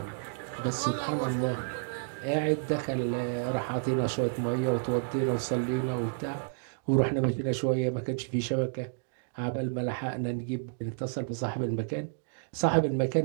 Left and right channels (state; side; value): silent; left; digital silence